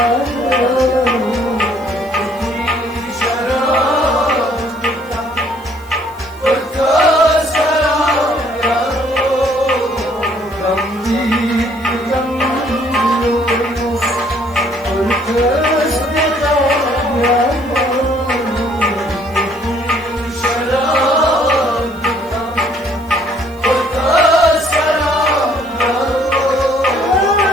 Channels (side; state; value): right; noise; hiss, 26 dB below the sound